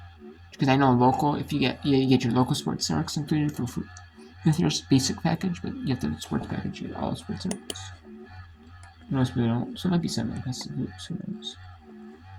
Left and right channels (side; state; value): both; identical; correlation 1.00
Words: Because I know local, if you get your local sports networks included for food with your basic package, but you have the sports package, you get all the sports networks. Most people don't, so it might be simulcast on hoops, who knows.